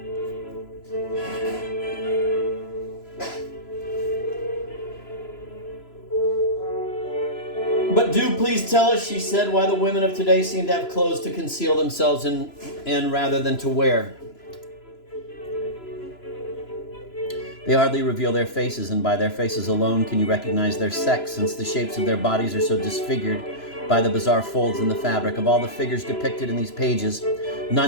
But do please tell us, she said, why the women of today seem to have clothes to conceal themselves in rather than to wear. They hardly reveal their faces, and by their faces alone can you recognize their sex, since the shapes of their bodies are so disfigured by the bizarre folds in the fabric. Of all the figures depicted in these pages,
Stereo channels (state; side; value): late; right; 3.0 ms